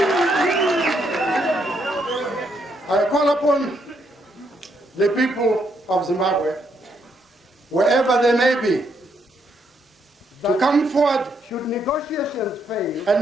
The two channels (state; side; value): normal; both; correlation 0.75